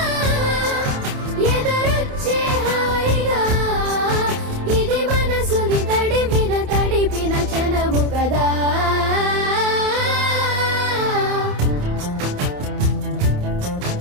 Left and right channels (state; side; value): late; left; 28 ms